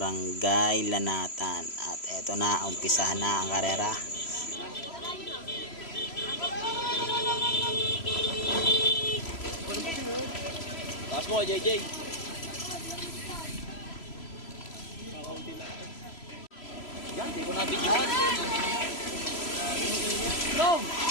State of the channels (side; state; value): right; late; 3.0 ms